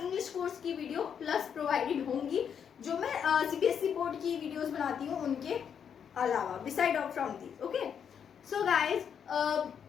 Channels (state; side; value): quieter; right; 7.8 dB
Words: इंग्लिश कोर्स की वीडियो प्लस प्रोवाइडेड होंगी, जो मैं सीबीएसई बोर्ड की वीडियोस बनाती हूँ उनके अलावा, beside of from these. Okay, so guys,